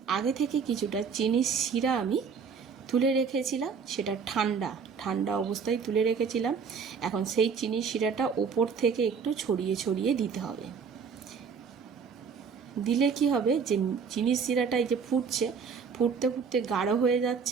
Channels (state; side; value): quieter; left; 6.0 dB